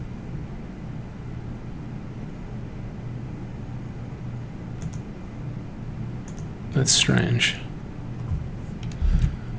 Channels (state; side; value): identical; both; correlation 1.00